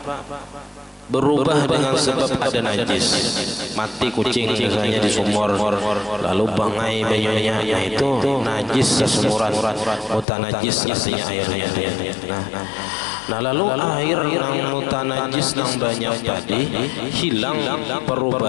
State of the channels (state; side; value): drops out; right; at 10.2 s